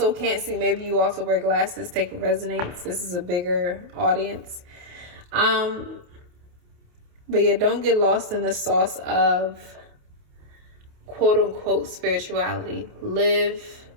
can't see, maybe you also wear glasses. Take resonates. This is a bigger audience. But yeah, don't get lost in the sauce of quote unquote spirituality. Live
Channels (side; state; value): left; late; 28 ms